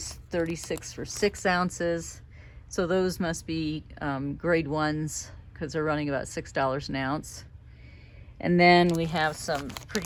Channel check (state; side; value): identical; both; correlation 1.00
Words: 36 for 6 ounces. So those must be grade 1s, because they're running about $6 an ounce. And then we have some